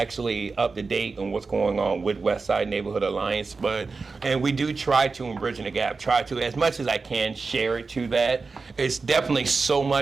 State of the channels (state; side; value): quieter; left; 4.3 dB